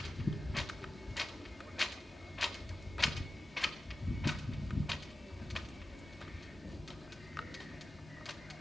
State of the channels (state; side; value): normal; both; correlation 0.94